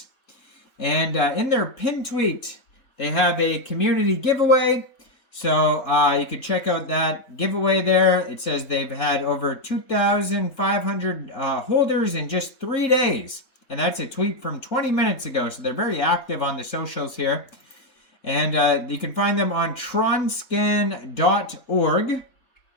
And in their pin tweet, they have a community giveaway. So you can check out that giveaway there. It says they've had over 2,500 holders in just 3 days. And that's a tweet from 20 minutes ago. So they're very active on the socials here. And you can find them on tronscan.org.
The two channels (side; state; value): right; late; 3.6 ms